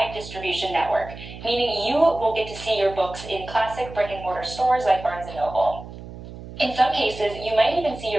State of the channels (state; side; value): noise; right; hum, 13 dB below the sound